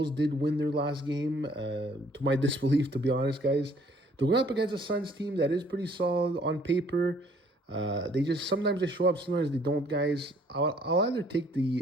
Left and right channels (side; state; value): both; normal; correlation 0.60